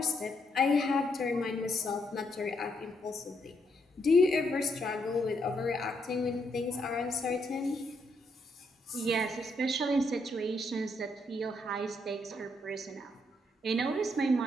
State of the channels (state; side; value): normal; both; correlation 0.76